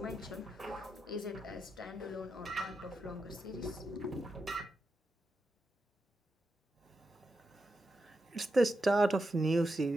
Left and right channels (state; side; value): normal; both; correlation 0.87